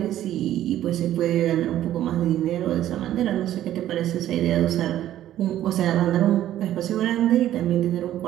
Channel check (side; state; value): left; quieter; 12.6 dB